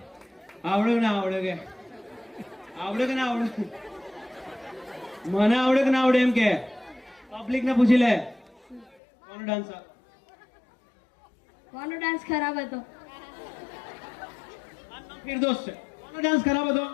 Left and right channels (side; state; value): right; drops out; at 9.0 s